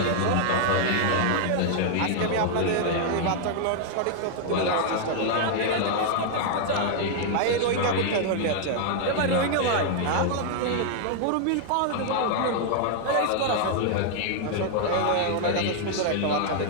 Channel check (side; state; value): both; different; correlation 0.00